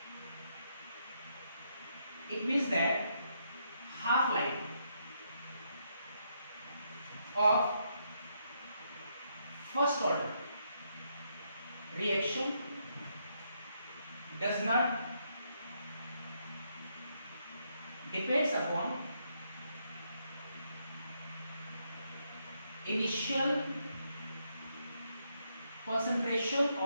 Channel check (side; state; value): both; inverted; correlation -0.77